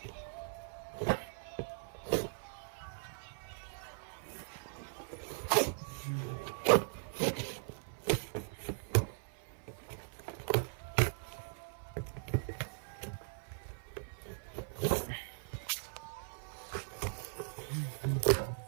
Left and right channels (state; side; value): silent; left; 52 dB below the other